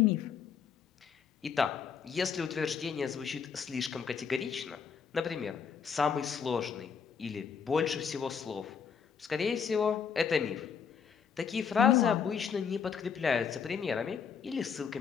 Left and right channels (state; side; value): quieter; right; 6.7 dB